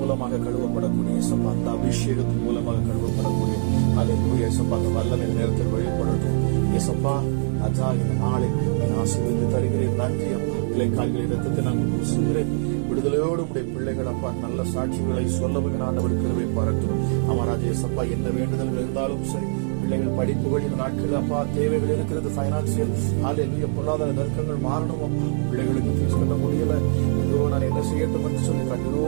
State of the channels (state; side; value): silent; left; 63 dB below the other